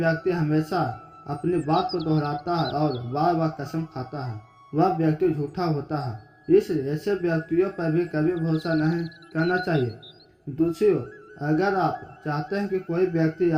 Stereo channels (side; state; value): both; identical; correlation 1.00